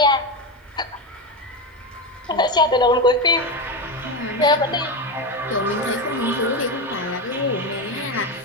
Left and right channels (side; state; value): both; normal; correlation 0.16